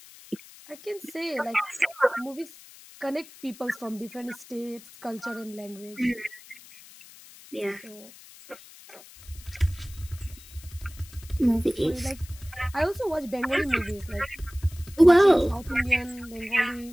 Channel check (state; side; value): noise; left; hiss, 20 dB below the sound